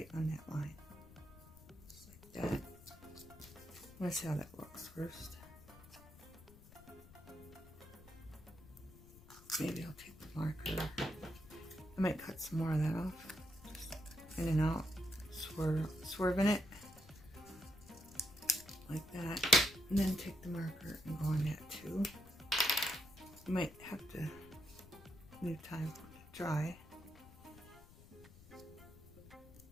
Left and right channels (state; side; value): noise; left; rumble, 20 dB below the sound